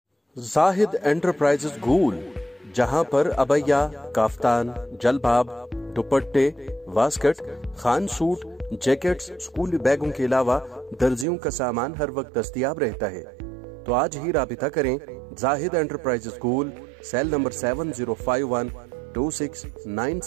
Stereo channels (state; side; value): drops out; left; at 11.2 s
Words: जाहिद एंटरप्राइजेज गूल, जहां पर अबैया, काफ्तान, जलबाब, दुपट्टे, वास्कट, खान सूट, जैकेट्स, स्कूली बैगों के अलावा दर्जियों का सामान हर वक्त दस्तयाब रहता है। तो आज ही राबिता करें जाहिद एंटरप्राइजेज गूल, सेल नंबर